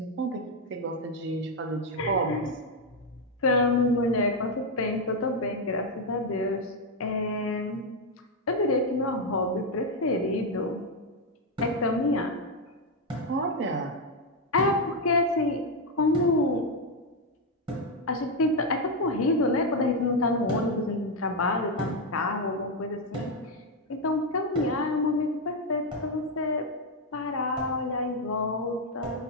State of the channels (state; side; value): normal; both; correlation 0.04